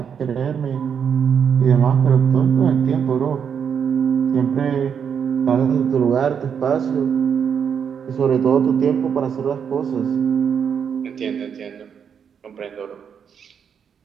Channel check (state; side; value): quieter; left; 7.4 dB